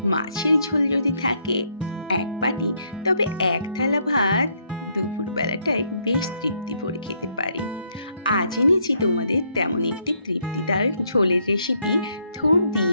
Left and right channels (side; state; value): both; inverted; correlation -0.72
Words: মাছের ঝোল যদি থাকে এক বাটি, তবে এক থালা ভাত দুপুরবেলাটায় বেশ তৃপ্তি ভরে খেতে পারি। আজ এনেছি তোমাদের তেমন একটি তৃপ্তিদায়ক ঝোলের রেসিপি, থোড়